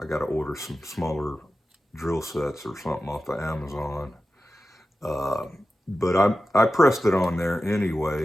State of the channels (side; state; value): both; normal; correlation 0.93